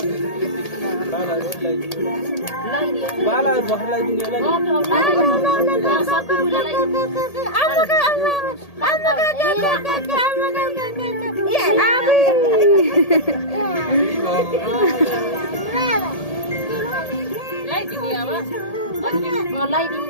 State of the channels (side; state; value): right; late; 1.8 ms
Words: बाला बखलाई दिने लाइदिनु